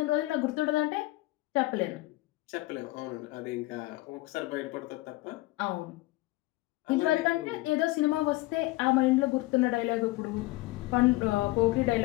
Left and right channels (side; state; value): right; quieter; 19.7 dB